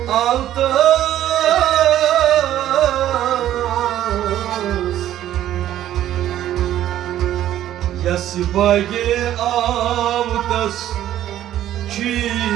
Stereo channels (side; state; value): left; quieter; 12.4 dB